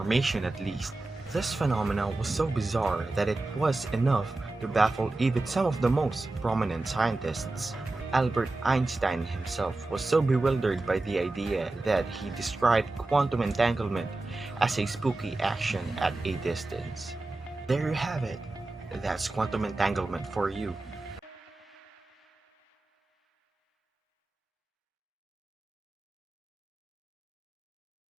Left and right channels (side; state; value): left; quieter; 3.0 dB